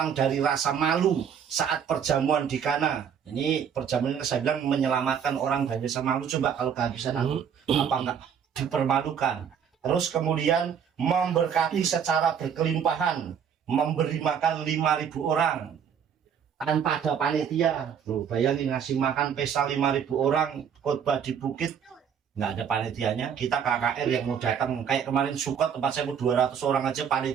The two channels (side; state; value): left; quieter; 7.8 dB